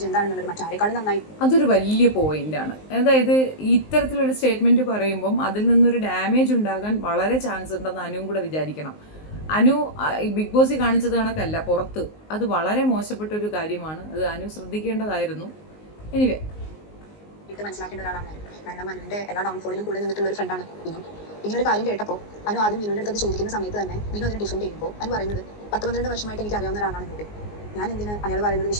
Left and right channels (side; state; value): right; late; 19 ms